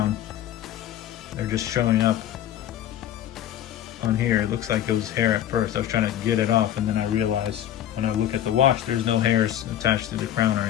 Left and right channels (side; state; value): right; quieter; 11.4 dB